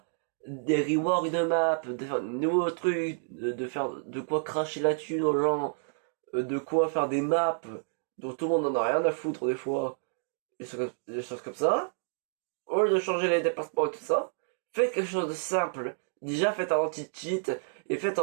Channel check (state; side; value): silent; left; digital silence